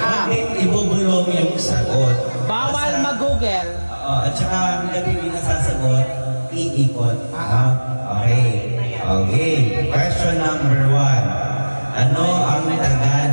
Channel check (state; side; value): inverted; both; correlation -1.00